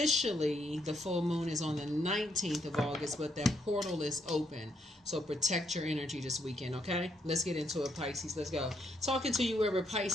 the full moon is on the 19th of August, but that portal is open. So protect your energy this weekend, okay? Let's get into it, Pisces. Let's go. Talking to you wherever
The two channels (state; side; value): normal; both; correlation 0.75